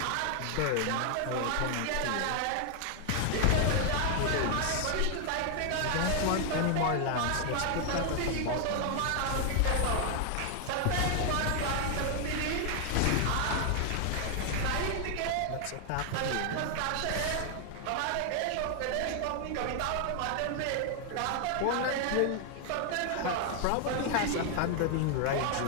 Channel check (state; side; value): different; both; correlation 0.00